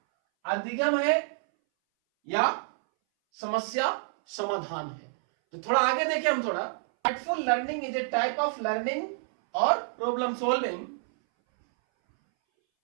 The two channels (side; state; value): left; silent; 59 dB below the other